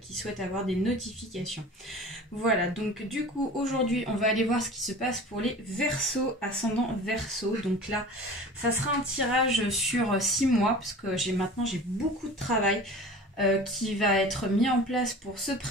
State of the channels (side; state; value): both; normal; correlation 0.39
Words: souhaitent avoir des notifications. Voilà, donc du coup aujourd'hui on va aller voir ce qui se passe pour les Verseaux, ascendant Verseau. Donc là ça sera un tirage sur 6 mois parce que maintenant j'ai beaucoup de travail qui va être mis en place pour ce